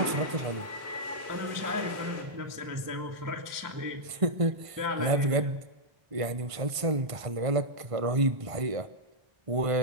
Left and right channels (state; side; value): late; left; 1.5 ms